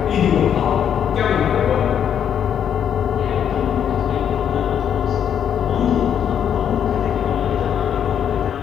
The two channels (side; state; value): right; quieter; 8.8 dB